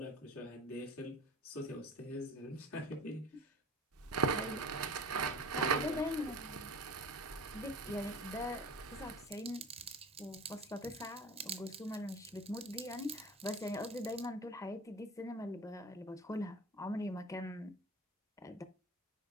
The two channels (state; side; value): normal; both; correlation 0.37